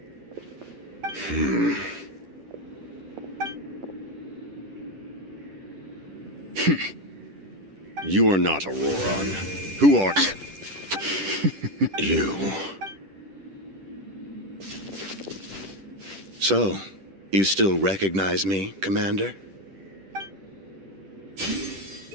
You are not Auroran. Who are... you? So, you still recognize me, Commander?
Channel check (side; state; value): left; late; 10 ms